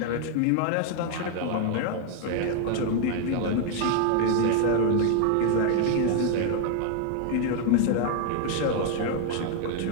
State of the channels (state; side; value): different; both; correlation 0.00